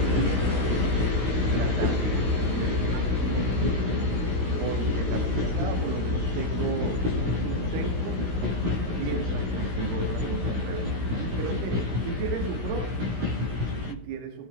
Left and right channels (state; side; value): late; left; 16 ms